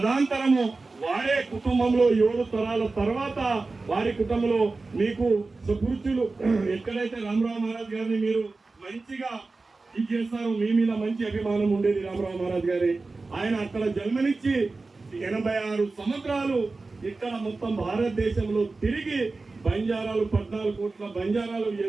వారే కుటుంబంలో 7 తరాల తర్వాత వారి కుటుంబంలో మీకు సుకృతులు ఎక్కడైతే రామరావు మహారాజ్ గారిని మీరు మంచిగా ఇది చేస్తారు, మీ మీద మంచి అభిమానం ఉండేది రామరావు మహారాజ్ గారి. ఆయన అక్కడ జన్మనిచ్చి 86 సంవత్సరాలు ఇక్కడ మొత్తం భారతదేశంలో తిరిగి బంజారాలు 14 కోట్ల బంజారాలు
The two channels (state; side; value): quieter; left; 3.7 dB